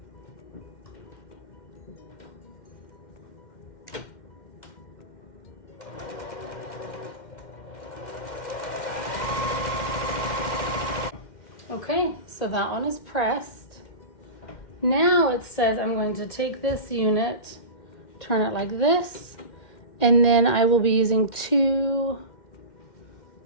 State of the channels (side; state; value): right; late; 2.1 ms